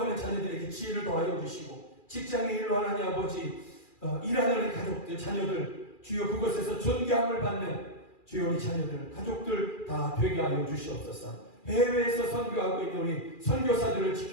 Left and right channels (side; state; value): right; late; 2.4 ms